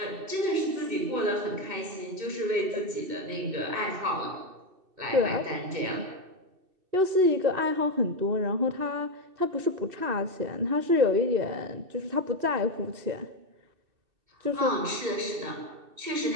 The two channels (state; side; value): late; left; 2.6 ms